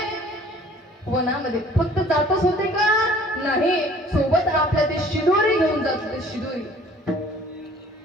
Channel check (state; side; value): normal; both; correlation 0.53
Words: वनामध्ये. फक्त जातच होते का? नाही, सोबत आपल्या ते शिदोरी घेऊन जात होते, शिदोरी.